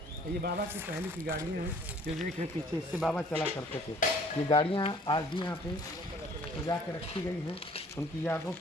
ये बाबा की पहले की गाड़ियाँ हैं जो देखें पीछे, इससे बाबा चला करते थे। ये गाड़ियाँ आज भी यहाँ पे सजा के रखी गई हैं उनकी यादों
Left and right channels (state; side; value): normal; both; correlation 0.56